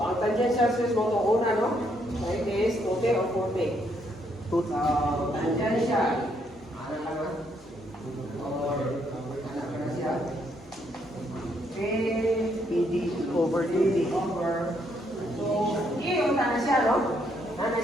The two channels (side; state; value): both; normal; correlation 0.73